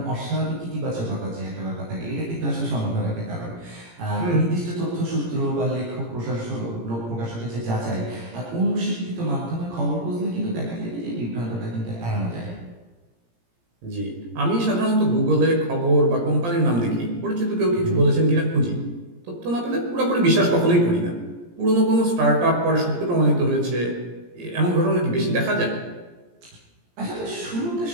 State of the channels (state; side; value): late; left; 17 ms